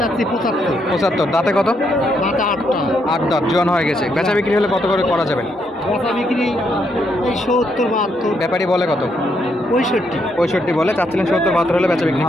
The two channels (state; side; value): normal; both; correlation 0.76